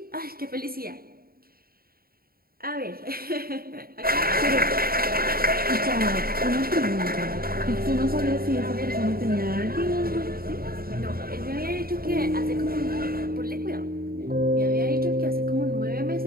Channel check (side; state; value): left; late; 0.43 ms